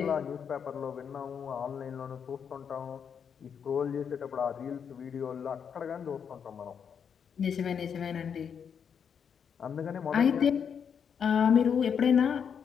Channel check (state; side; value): quieter; right; 7.3 dB